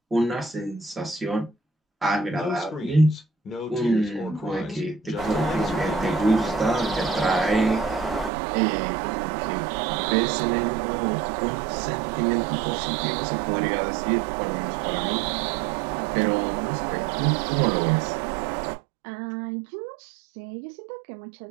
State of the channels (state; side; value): drops out; left; at 8.3 s